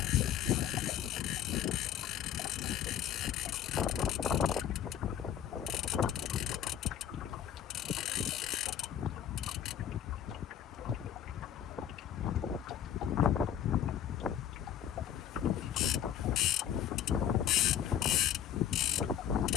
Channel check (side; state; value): right; quieter; 10.0 dB